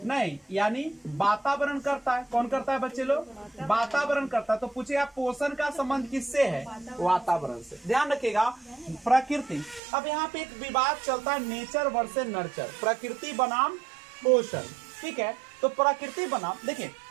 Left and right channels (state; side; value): drops out; left; at 9.8 s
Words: नहीं यानी वातावरण करता है। कौन करता है बच्चे लोग, वातावरण करता है। तो पूछे आप पोषण का संबंध किससे है, वातावरण से। ध्यान रखिएगा प्रकृति। अब यहाँ पे एक विवाद चलता है, नेचर वर्सेस नर्चर, प्रकृति बनाम पोषण। ठीक है, तो प्रकृति बनाम, देखिए